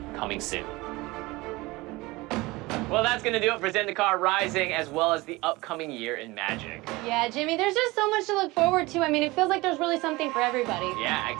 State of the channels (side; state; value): left; quieter; 21.7 dB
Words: coming soon. Well, that's going to do it for Zendikar Rising, as well as the upcoming year in Magic. Yeah, Jimmy, there's just so much to look forward to. I mean, it feels like there's really something for everybody. Yeah,